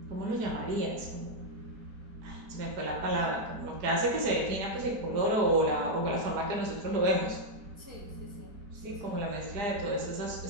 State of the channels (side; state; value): left; late; 4.9 ms